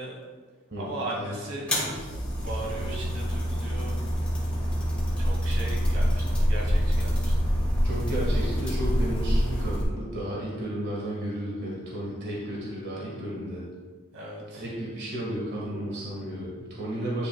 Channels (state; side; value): normal; both; correlation 0.85